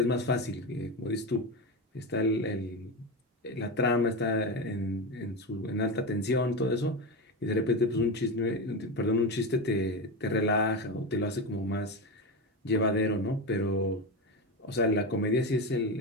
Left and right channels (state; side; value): normal; both; correlation 0.18